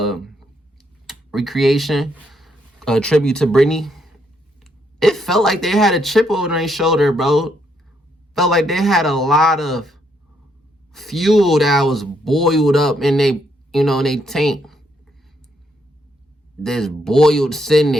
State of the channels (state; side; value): normal; both; correlation 0.74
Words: recreation, tribute to Britney. It felt like they had a chip over their shoulder, bro. Felt like they had a lot of fuel that was boiled up in they, you know, in they tank. this boy was sitting